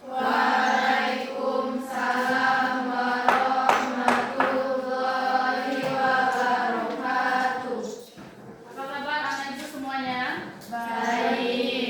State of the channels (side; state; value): both; identical; correlation 1.00